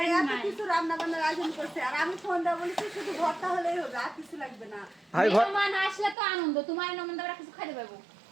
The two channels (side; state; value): left; drops out; at 6.2 s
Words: এত নাই। কিছু রান্না বান্নার আয়োজন করছে আর আমি ফোন দেওয়া বলেছি শুধু ভর্তা হলেই হবে আর কিছু লাগবে না ভাই মেহমান আসলে তো আনন্দ তোমার নমন আমরা কিছু খাইতে পারবো